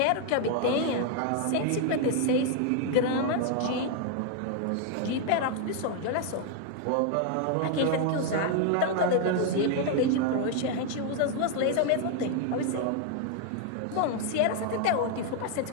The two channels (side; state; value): both; different; correlation 0.00